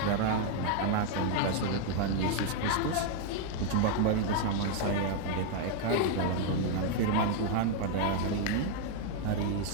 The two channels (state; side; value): different; both; correlation 0.00